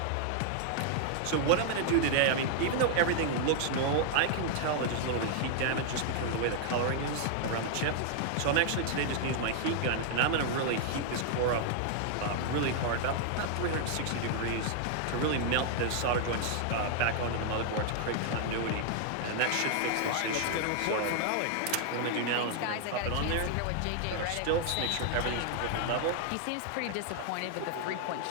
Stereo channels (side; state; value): both; different; correlation 0.00